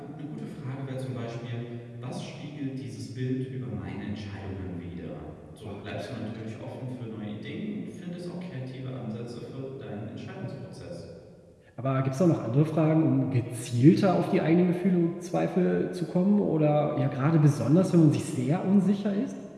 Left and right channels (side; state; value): both; identical; correlation 1.00